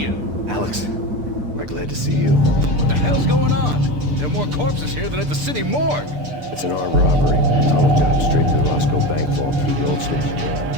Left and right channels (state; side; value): late; left; 6.8 ms